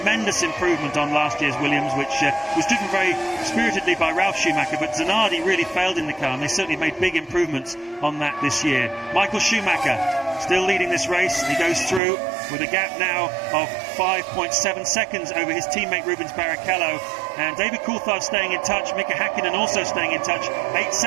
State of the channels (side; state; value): left; drops out; at 12.0 s